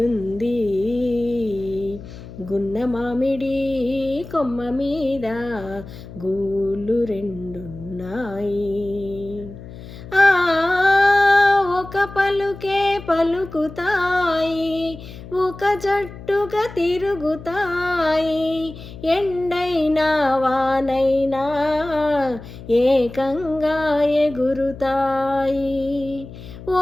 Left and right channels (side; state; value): left; noise; hum, 15 dB below the sound